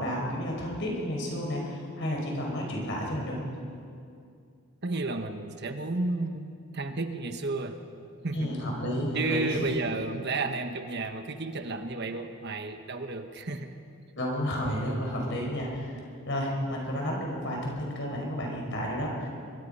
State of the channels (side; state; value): both; normal; correlation 0.42